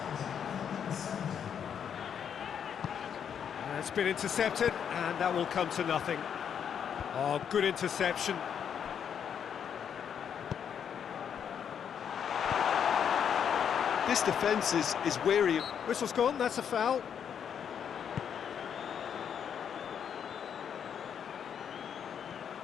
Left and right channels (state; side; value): quieter; right; 8.1 dB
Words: It's been intercepted, and that will come to nothing. Oh, good interception. This defence is wary. Whistle's gone, that's a foul.